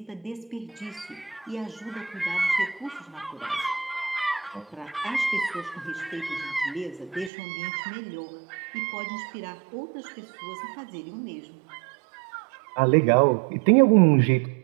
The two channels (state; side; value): drops out; left; at 7.3 s